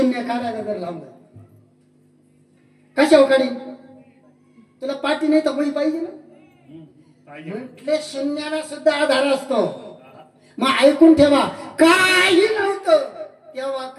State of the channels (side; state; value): both; identical; correlation 1.00